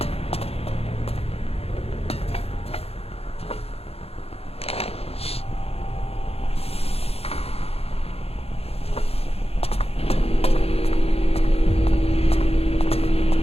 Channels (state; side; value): late; right; 0.29 ms